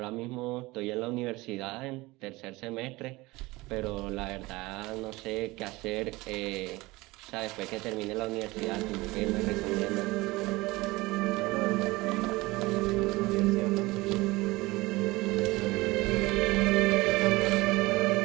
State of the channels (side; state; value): left; quieter; 21.2 dB